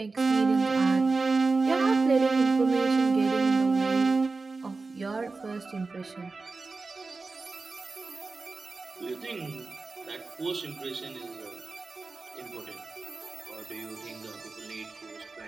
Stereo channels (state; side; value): quieter; left; 3.9 dB